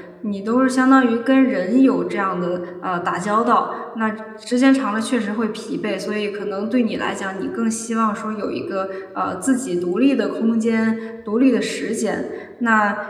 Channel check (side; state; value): both; identical; correlation 1.00